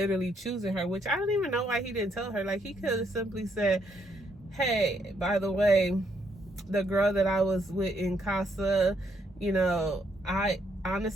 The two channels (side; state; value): both; normal; correlation 0.74